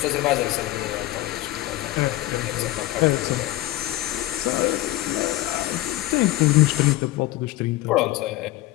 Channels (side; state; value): right; quieter; 16.6 dB